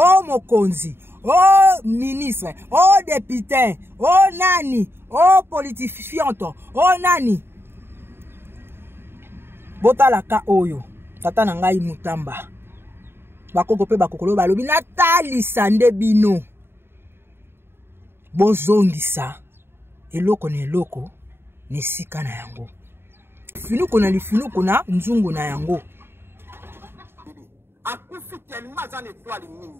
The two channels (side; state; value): left; late; 0.11 ms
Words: mokonzi o ministre o député o nani o politifianto o nani botalaka oyo tata na ngai mutamba bakoko pe bakokolo balobi natalisa nde bino bozongisa eloko na eloko ne sika na yango finuko na lifinuko na nzungu na yango akufi tellement za étoile